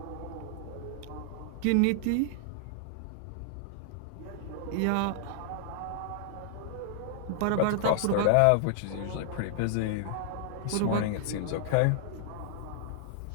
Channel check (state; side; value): different; both; correlation -0.01